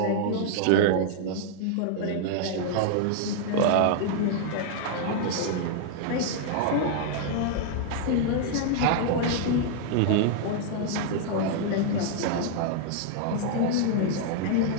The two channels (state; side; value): different; both; correlation -0.01